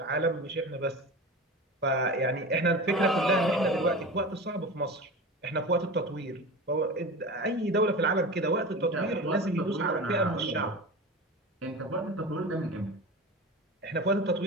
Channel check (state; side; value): normal; both; correlation 0.30